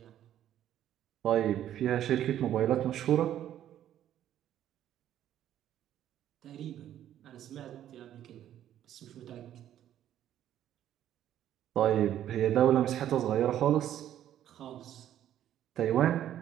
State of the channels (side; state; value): left; quieter; 11.4 dB